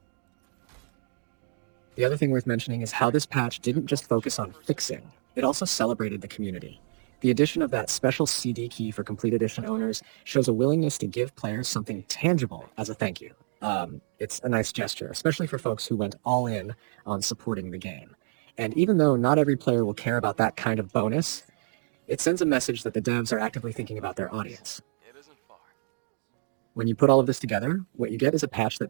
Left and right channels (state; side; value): silent; left; digital silence